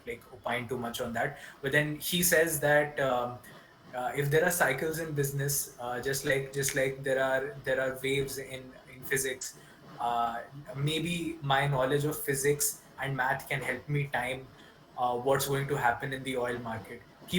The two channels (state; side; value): identical; both; correlation 1.00